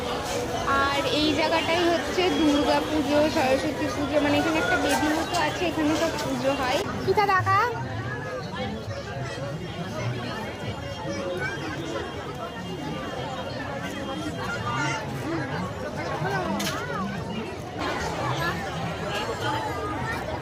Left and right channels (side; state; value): both; identical; correlation 1.00